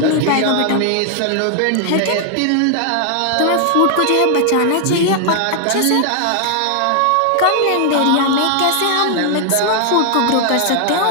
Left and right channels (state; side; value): different; both; correlation 0.00